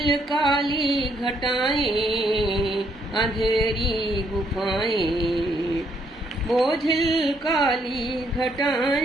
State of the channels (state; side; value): normal; both; correlation 0.71